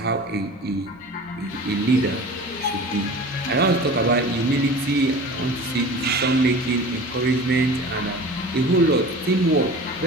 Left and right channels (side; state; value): both; normal; correlation 0.38